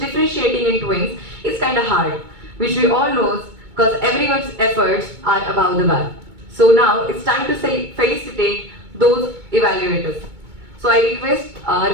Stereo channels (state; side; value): late; left; 2.2 ms